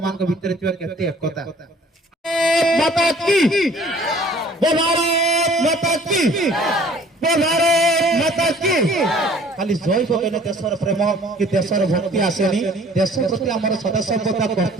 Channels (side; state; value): both; normal; correlation 0.53